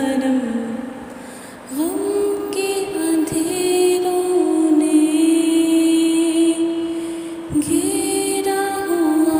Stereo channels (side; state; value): both; identical; correlation 1.00